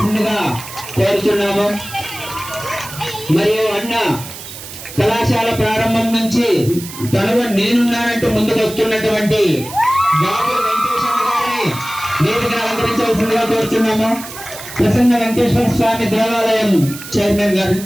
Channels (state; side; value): noise; right; hiss, 13 dB below the sound